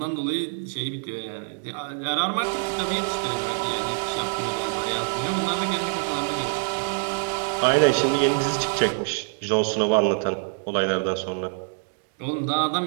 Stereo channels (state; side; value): silent; left; 59 dB below the other